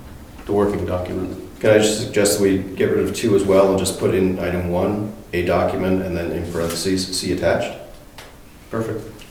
the working document. Can I just suggest that we get rid of 2 as well and just put in item 1, a document, and then in parentheses, see attached? Perfect.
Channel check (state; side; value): identical; both; correlation 1.00